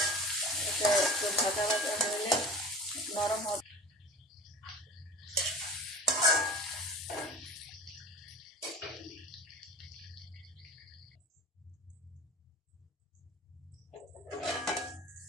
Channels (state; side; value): normal; both; correlation 0.37